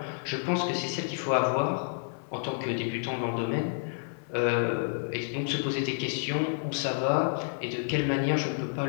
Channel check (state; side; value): silent; right; 56 dB below the other